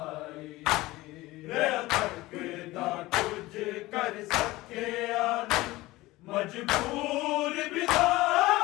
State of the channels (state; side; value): quieter; right; 19.1 dB